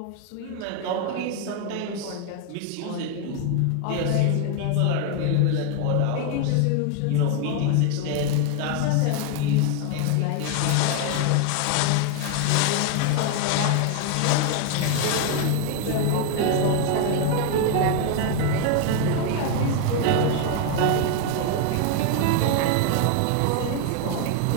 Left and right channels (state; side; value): different; both; correlation 0.01